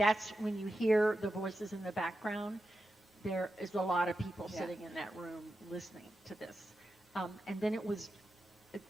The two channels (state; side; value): normal; both; correlation 0.90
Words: when you hear the voices in the background, there is a lot of people sitting in that room listening to this. And then it was